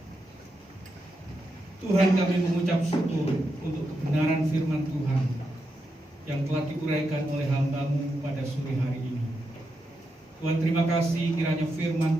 Tuhan, kami mengucap syukur untuk kebenaran firman Tuhan yang telah diuraikan oleh hamba-Mu pada sore hari ini. Tuhan, terima kasih kiranya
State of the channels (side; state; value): both; normal; correlation 0.85